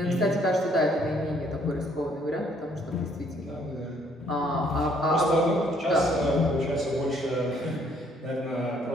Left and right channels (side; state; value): both; normal; correlation 0.65